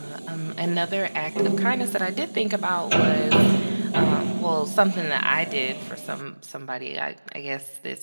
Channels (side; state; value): both; inverted; correlation -1.00